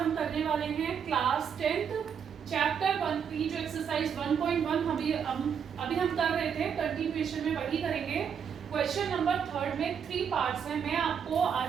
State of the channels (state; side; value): quieter; left; 7.4 dB